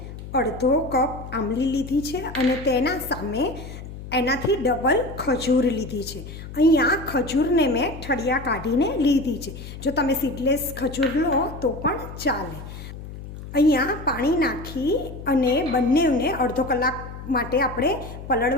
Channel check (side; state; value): left; noise; hum, 12 dB below the sound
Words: અડધો કપ આંબલી લીધી છે અને તેના સામે એનાથી ડબલ ખજૂર લીધી છે. અહીંયા ખજૂરને મેં ઠળિયા કાઢીને લીધી છે. જો તમે સીડલેસ ખજૂર લો તો પણ ચાલે. અહીંયા પાણી નાખી અને બંનેને અડધો કલાક માટે આપણે